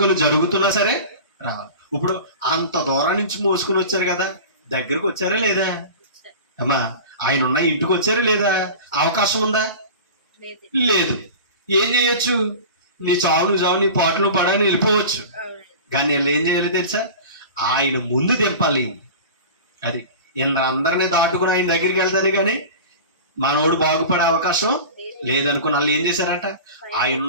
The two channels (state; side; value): inverted; both; correlation -0.34